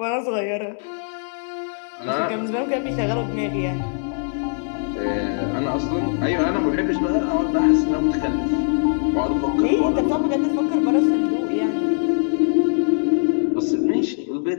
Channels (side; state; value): right; silent; 64 dB below the other